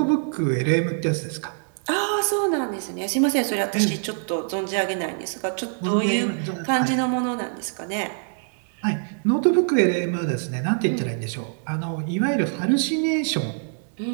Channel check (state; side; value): silent; left; 62 dB below the other